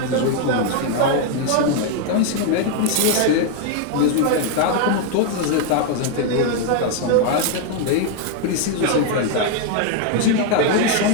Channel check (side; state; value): both; different; correlation 0.01